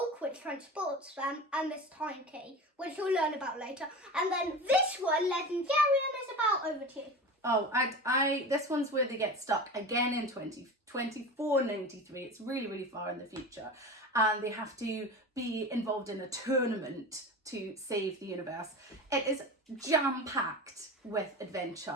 which transports them, and this time key, which you'll learn about later. And then this one, Legendarium, is about. Over to you. Oh, this one's where they get stuck again in 2493. It's really, really far in the future. And they have to be involved in a tournament to save the universe. It is jam-packed with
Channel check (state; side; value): normal; both; correlation 0.31